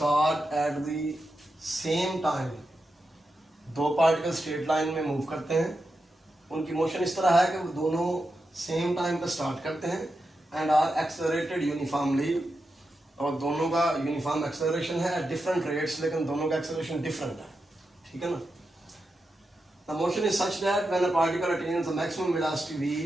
at the same time. दो पार्टिकल स्ट्रेट लाइन में मूव करते हैं, उनकी मोशन इस तरह है कि वो दोनों सेम टाइम पर स्टार्ट करते हैं एंड आर एक्सेलरेटेड यूनिफॉर्मली, और दोनों का यूनिफॉर्म एक्सेलरेशन है एट डिफरेंट रेट्स, लेकिन दोनों का एक्सेलरेशन डिफरेंट है, ठीक है ना। The motion is such that when a particle attains the maximum velocity v,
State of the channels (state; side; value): normal; both; correlation 0.88